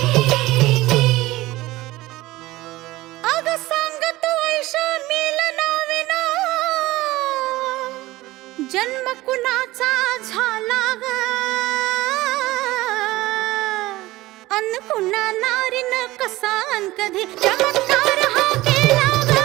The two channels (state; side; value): quieter; left; 18.4 dB